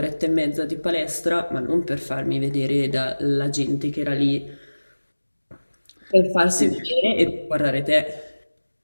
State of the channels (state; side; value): inverted; both; correlation -1.00